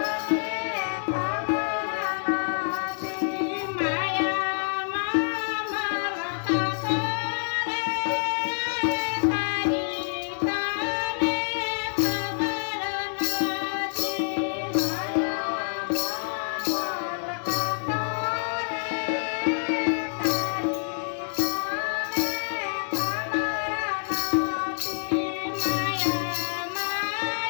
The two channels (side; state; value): right; silent; digital silence